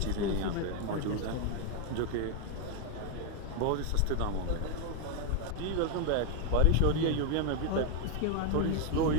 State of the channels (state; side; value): different; both; correlation 0.01